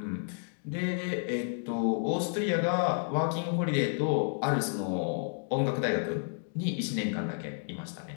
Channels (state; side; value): silent; right; digital silence